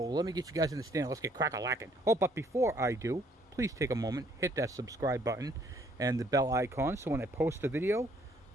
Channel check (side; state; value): both; normal; correlation 0.64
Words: let me get you guys in the stand. Let's get crack-a-lacking. Oh, but before I do, please take a moment, hit that subscribe button and the bell icon so when I post a video,